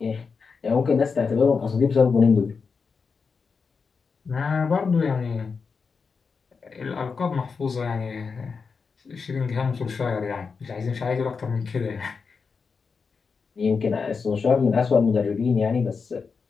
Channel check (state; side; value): quieter; right; 5.2 dB